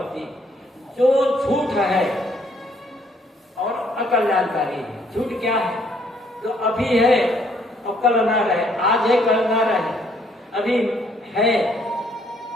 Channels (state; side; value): normal; both; correlation 0.66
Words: जो झूठ है और अकल्याणकारी है। झूठ क्या है? जो अभी है और कल ना रहे, आज है कल ना रहे, अभी है